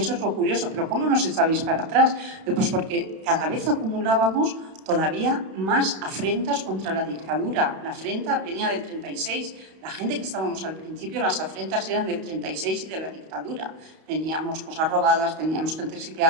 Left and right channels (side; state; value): left; late; 31 ms